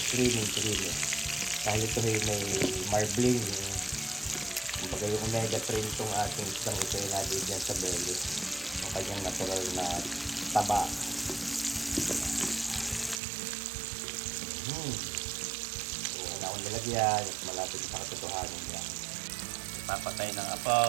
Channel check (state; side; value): drops out; left; at 13.2 s